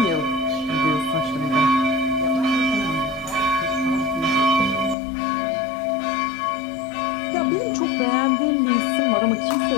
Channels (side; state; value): right; drops out; at 5.0 s